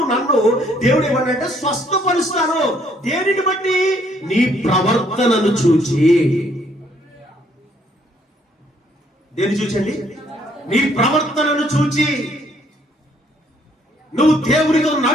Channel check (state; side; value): normal; both; correlation 0.66